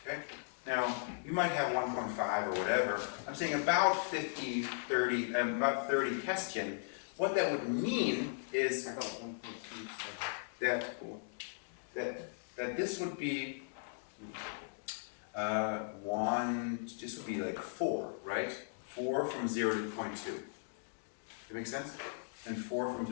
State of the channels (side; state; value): right; silent; digital silence